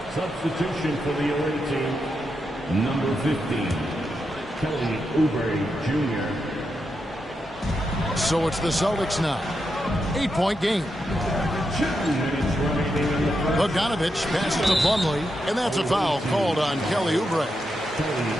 Substitution for the away team. Number 15, Kelly Oubre Jr. So it's the Celtics now. 8-point game. 2 minutes remaining in the first. Bogdanovich passes to Plumlee, and that's a foul called on Kelly Oubre.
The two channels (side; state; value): both; normal; correlation 0.85